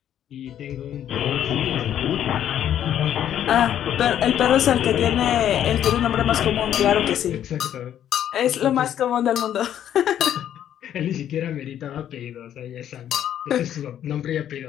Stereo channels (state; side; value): quieter; right; 10.5 dB